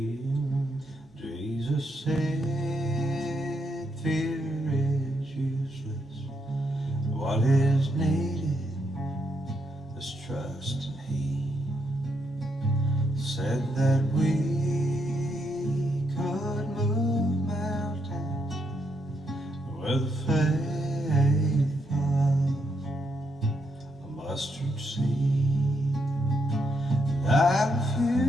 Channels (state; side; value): normal; both; correlation 0.78